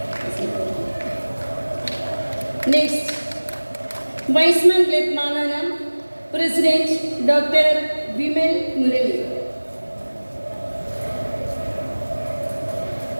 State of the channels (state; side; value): inverted; both; correlation -1.00